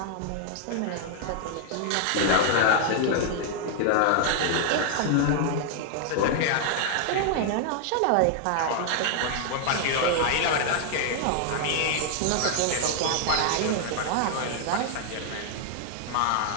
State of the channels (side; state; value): both; different; correlation 0.00